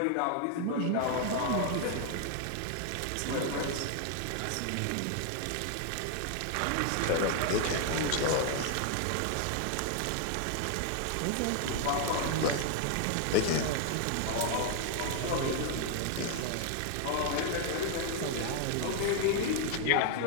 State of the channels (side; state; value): both; different; correlation 0.00